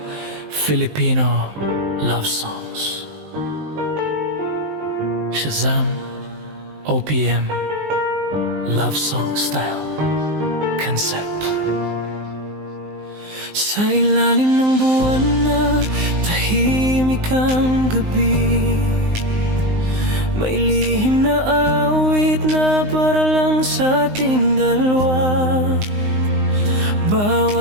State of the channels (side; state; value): left; late; 19 ms